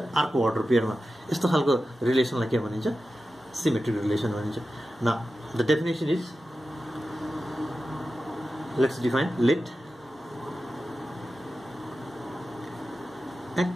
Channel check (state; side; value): normal; both; correlation 0.93